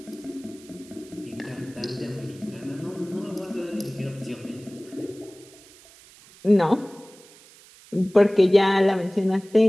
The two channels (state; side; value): noise; right; hiss, 23 dB below the sound